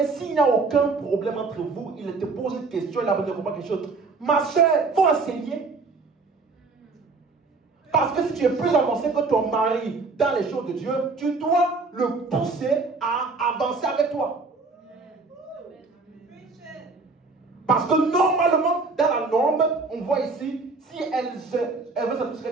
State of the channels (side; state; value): left; quieter; 4.0 dB